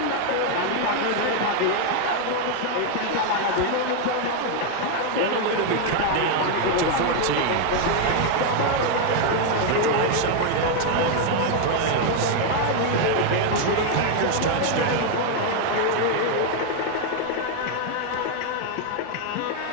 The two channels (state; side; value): different; both; correlation 0.01